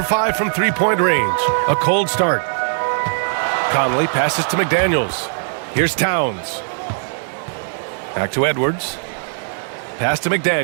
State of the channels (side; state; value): left; silent; 57 dB below the other